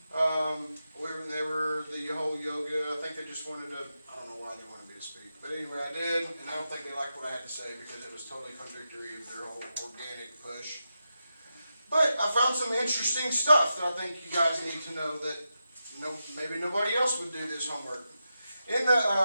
They were the whole yoga. I think they just wanted to, I don't know why they wanted me to speak. But anyway, I did, and I don't think they liked what I had to say because it was totally contradictory of their whole organic push. But I found some interesting stuff that I think you guys need to know that maybe nobody else would do this homework.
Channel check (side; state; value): both; inverted; correlation -0.88